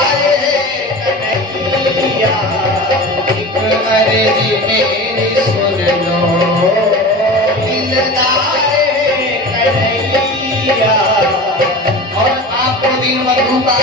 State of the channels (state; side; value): normal; both; correlation 0.33